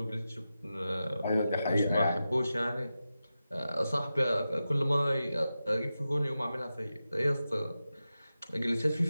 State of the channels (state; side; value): inverted; both; correlation -0.92